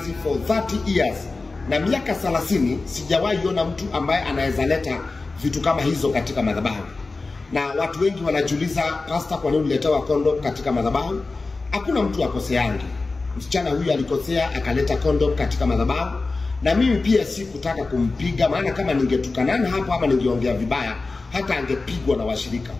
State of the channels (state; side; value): quieter; right; 3.7 dB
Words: for 30 years. Na miaka 30 sijawahi ona mtu ambaye anaweza leta vitu kama hizo katika madhabahu. Na watu wengi wanajiuliza, pastor, kwa nini uliletewa condom katika madhabahu? Hakuna mtu akoseangi. Msichana huyu alikosea akaleta condom katika madhabahu, na mimi pia sikutaka kumpiga, maana kama ningetukanana hapo ama ningeongea vibaya hata angepigwa na washirika.